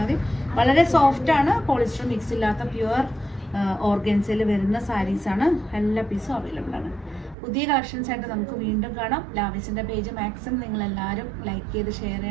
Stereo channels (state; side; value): drops out; left; at 7.4 s